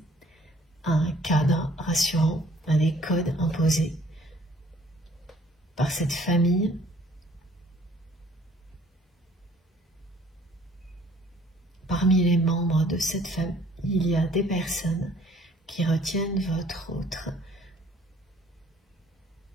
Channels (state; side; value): normal; both; correlation 0.58